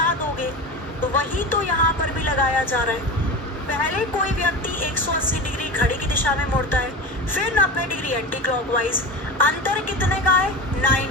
दोगे, तो वही तो यहाँ पर भी लगाया जा रहा है। पहले कोई व्यक्ति 180 डिग्री घड़ी की दिशा में मुड़ता है, फिर 90 डिग्री एंटी क्लॉकवाइज। अंतर कितने का है?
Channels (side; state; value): both; normal; correlation 0.27